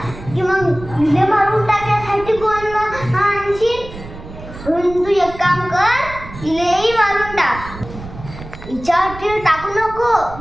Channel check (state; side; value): noise; right; rumble, 14 dB below the sound